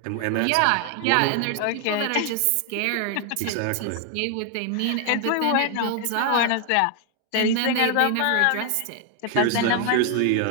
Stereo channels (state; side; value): different; both; correlation 0.00